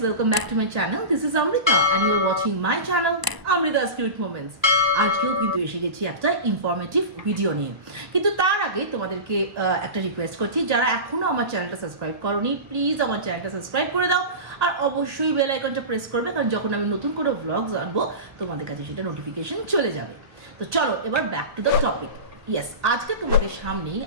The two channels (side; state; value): left; late; 1.0 ms